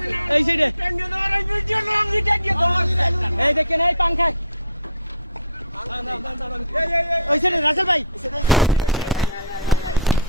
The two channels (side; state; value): both; inverted; correlation -0.46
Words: এই সাইডে এই দেখেন এই পাংখায় ওই সাইডে রাসেল ভাই